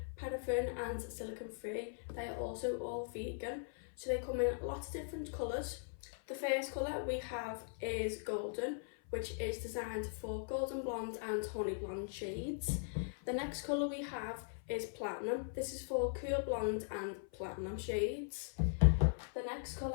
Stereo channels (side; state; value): right; silent; 51 dB below the other